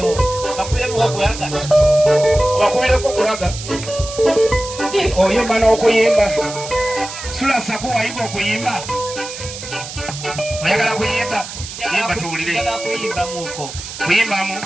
bakubireko okulaga obakubireko okulaga oyimba n'okuyimba sula saku wayiga okuyimba oyagala kuyimba yimba tuwulire kuyimbamuko kuyimbamu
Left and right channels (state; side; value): noise; right; hiss, 10 dB below the sound